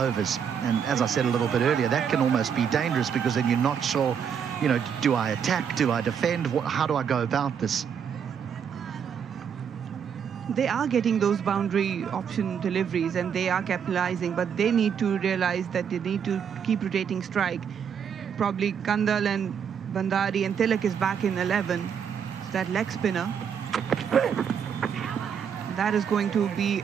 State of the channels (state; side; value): quieter; left; 7.6 dB